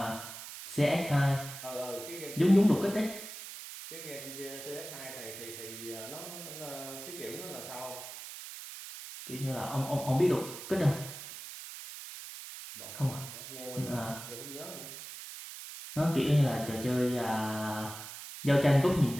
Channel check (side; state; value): right; noise; hiss, 11 dB below the sound